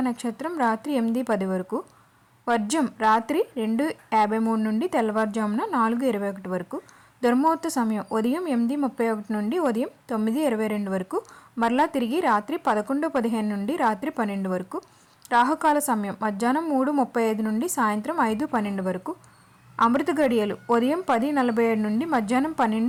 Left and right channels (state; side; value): identical; both; correlation 1.00